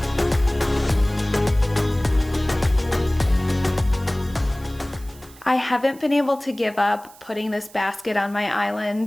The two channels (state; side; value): noise; right; hiss, 23 dB below the sound